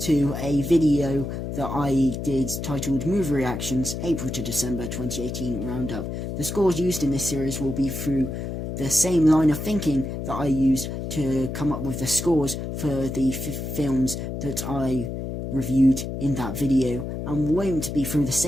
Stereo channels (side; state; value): left; noise; hum, 5 dB below the sound